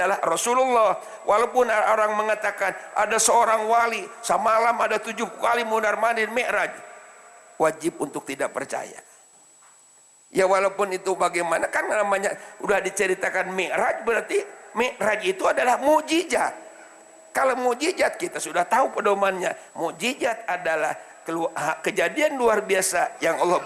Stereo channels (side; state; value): both; identical; correlation 1.00